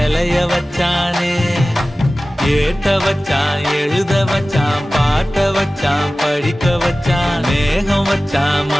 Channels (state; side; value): normal; both; correlation 0.97